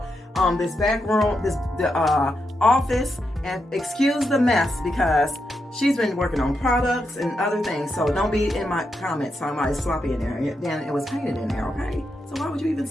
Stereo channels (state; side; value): normal; both; correlation 0.84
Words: this back room, the office, and excuse the mess because she's been working on products and other things. So don't be in my comments talking about it's sloppy in there. Then it was painted in there, okay? So why would you even